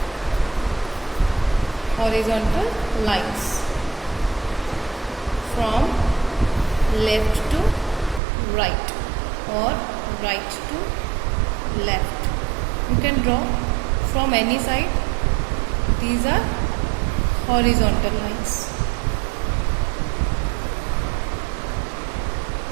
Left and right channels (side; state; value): left; drops out; at 8.2 s